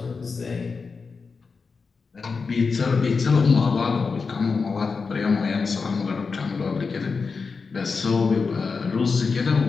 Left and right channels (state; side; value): quieter; right; 4.8 dB